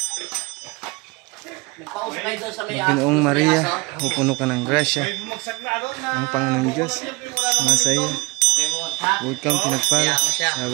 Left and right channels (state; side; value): quieter; left; 25.3 dB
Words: Ginoong Maria, pupuno ka ng grasya, ang Panginoon Diyos sumasa iyo. Bukod kang pinagpala sa